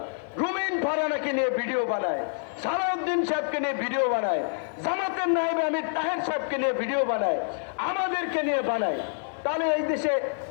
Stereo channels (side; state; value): right; silent; digital silence